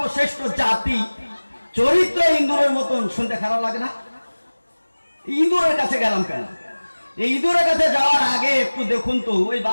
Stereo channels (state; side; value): inverted; both; correlation -1.00